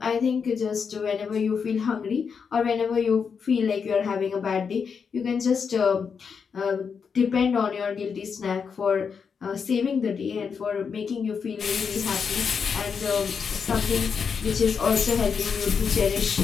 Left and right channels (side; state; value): right; quieter; 6.1 dB